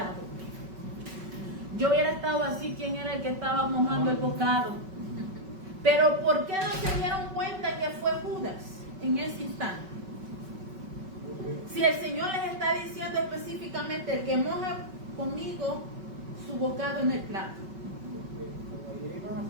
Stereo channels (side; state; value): left; late; 5.3 ms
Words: Yo hubiera estado así, ¿quién era el que estaba mojando el bocado? Pero ¿por qué no se dieron cuenta que fue Judas en ese instante? Si el Señor les está diciendo específicamente el que moja conmigo su bocado en el plato.